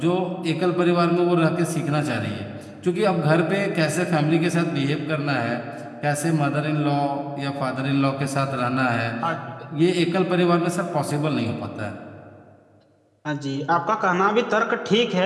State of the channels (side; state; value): both; identical; correlation 1.00